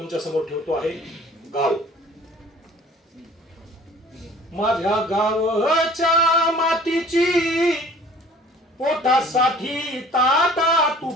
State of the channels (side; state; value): both; normal; correlation 0.50